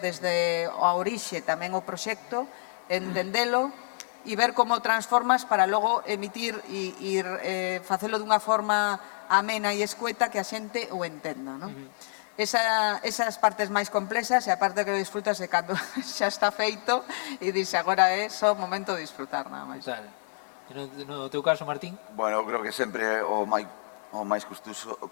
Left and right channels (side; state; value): right; silent; 59 dB below the other